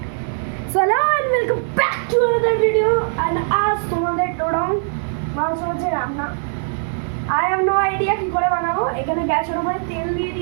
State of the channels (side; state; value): left; silent; 57 dB below the other